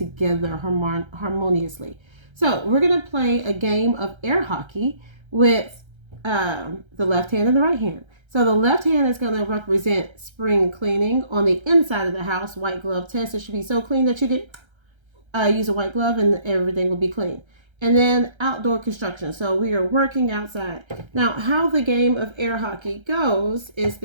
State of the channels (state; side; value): late; left; 1.3 ms